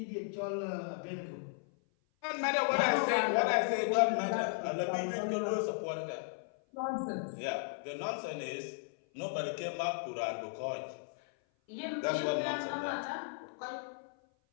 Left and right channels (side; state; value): right; silent; 54 dB below the other